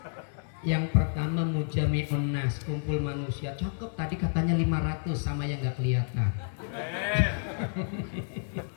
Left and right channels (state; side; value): silent; right; 58 dB below the other